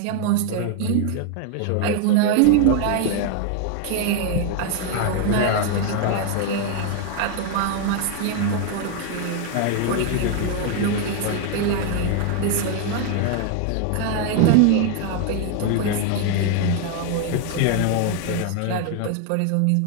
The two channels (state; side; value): different; both; correlation 0.00